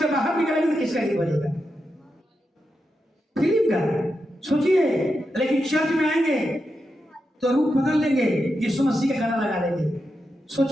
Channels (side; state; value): both; normal; correlation 0.87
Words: बाहर निकलेंगे तो किसका गीत बजेगा? फिल्म का। सोचिए, लेकिन चर्च में आएंगे तो रूप बदल लेंगे, यीशु मसीह का गाना लगा देंगे।